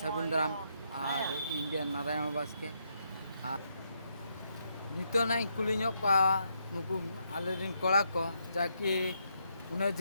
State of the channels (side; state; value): both; inverted; correlation -0.78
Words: दाराम और इंगे नारायण बास्के और नितो ना कुली नुकु आले रिन कोड़ा को जाकि उन्हें